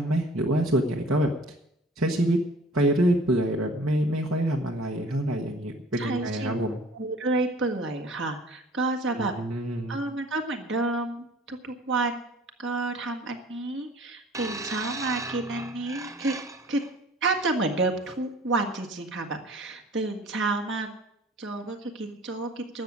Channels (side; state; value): both; normal; correlation 0.49